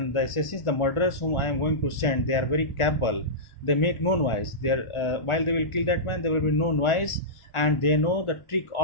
the assassins, the murderers whom I am going to send, they are very capable. They make no noise. They are, while they will kill that man, there will be no noise, and they know the trick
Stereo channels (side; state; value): right; late; 1.4 ms